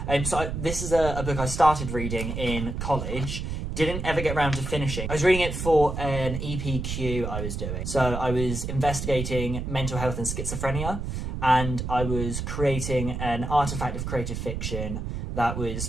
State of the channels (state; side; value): noise; right; rumble, 4 dB below the sound